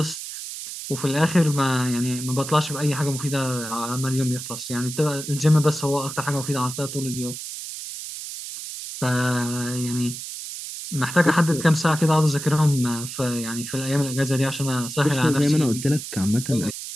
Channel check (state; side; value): noise; right; hiss, 9 dB below the sound